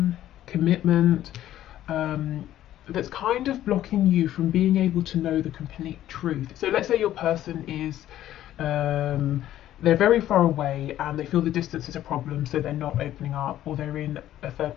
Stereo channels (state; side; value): quieter; right; 12.8 dB